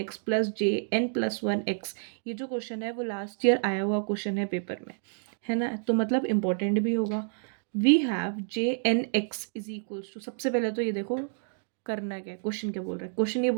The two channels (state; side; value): silent; left; digital silence